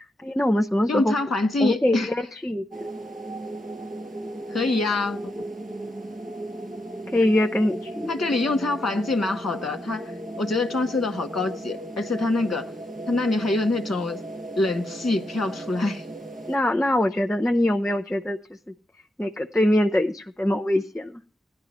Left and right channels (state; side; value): normal; both; correlation 0.84